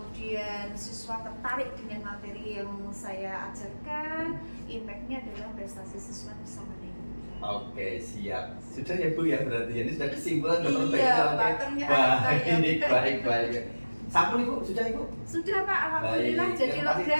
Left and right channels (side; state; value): both; inverted; correlation -1.00